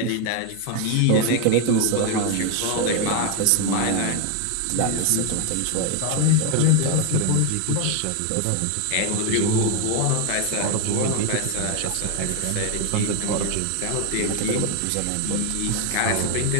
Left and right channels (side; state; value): both; different; correlation 0.01